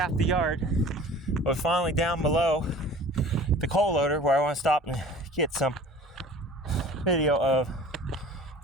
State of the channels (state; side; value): normal; both; correlation 0.44